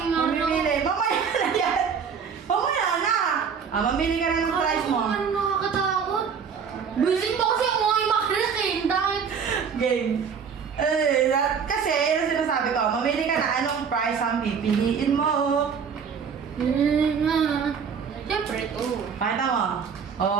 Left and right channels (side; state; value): left; quieter; 6.6 dB